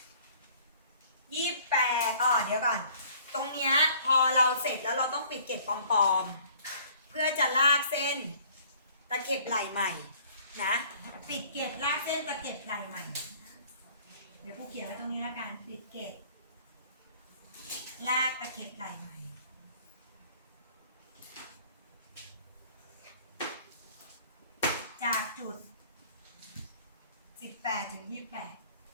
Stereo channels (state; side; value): inverted; both; correlation -0.54